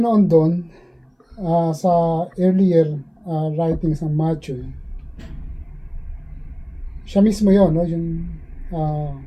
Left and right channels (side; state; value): both; identical; correlation 1.00